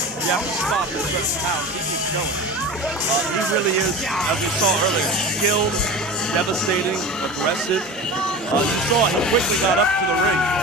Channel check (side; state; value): both; normal; correlation 0.31